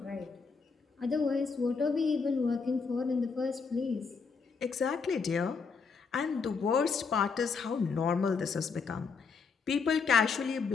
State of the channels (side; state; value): right; quieter; 5.2 dB